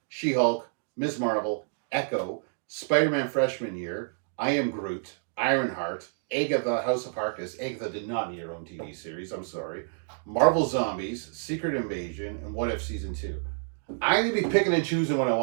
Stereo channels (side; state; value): left; silent; digital silence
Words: She-Hulk, Ms. Marvel, Echo, Spider-Man Freshman Year, I Am Groot, Ironheart, Agatha House of Harkness. Agatha did not need her own TV series, I'm sorry. Marvel Zombies, Secret Invasion, and What If Season 2. I'm going to be picking and choosing what I